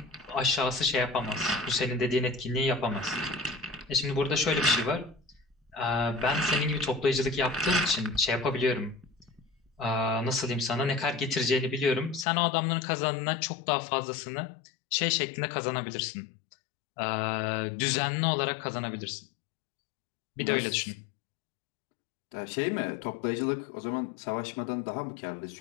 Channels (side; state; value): right; drops out; at 12.2 s